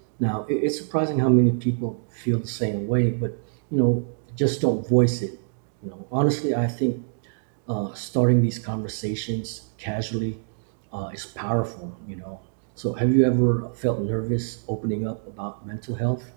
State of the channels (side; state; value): left; silent; digital silence